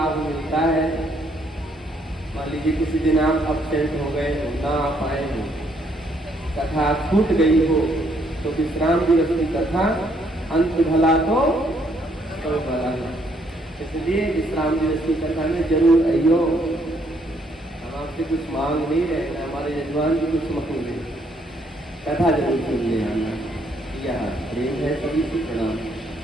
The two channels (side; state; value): both; normal; correlation 0.70